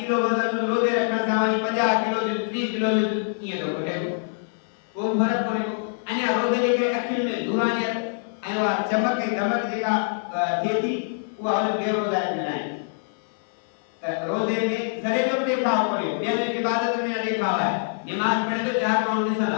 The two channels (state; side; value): silent; right; 60 dB below the other